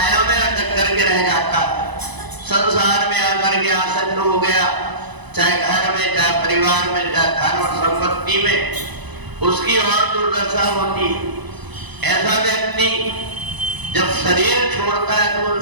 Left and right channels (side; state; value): left; late; 1.0 ms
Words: में अटक करके रह जाता है, संसार में आकर के आसक्त हो गया, चाहे घर में, चाहे परिवार में, चाहे धन और संपत्ति में, उसकी और दुर्दशा होती है। ऐसा व्यक्ति जब शरीर छोड़ता है तो उन